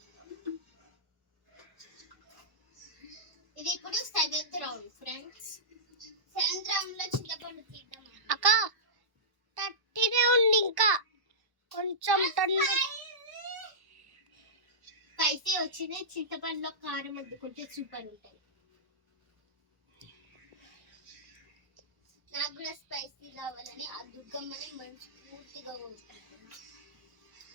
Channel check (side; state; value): left; late; 1.1 ms